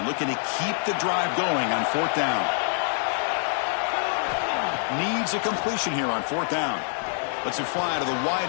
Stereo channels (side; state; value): right; silent; digital silence